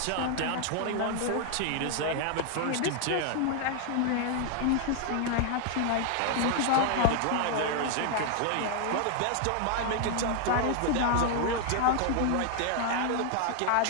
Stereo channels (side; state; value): both; different; correlation 0.00